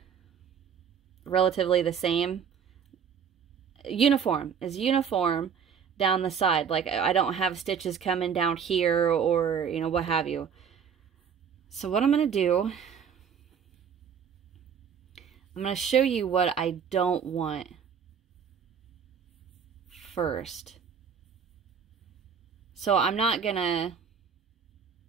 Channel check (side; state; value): left; quieter; 7.2 dB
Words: relatively the same. Uniform down the side. Like I don't have stitches coming down here or, you know, what have you. So what I'm going to do, I'm going to show you what I don't want first. So I'm not going to,